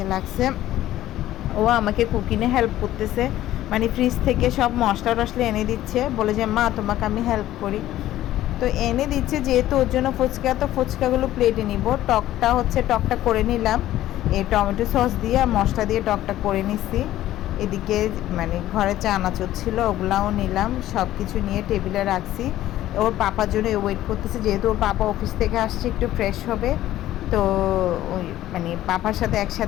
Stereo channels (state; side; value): quieter; right; 14.0 dB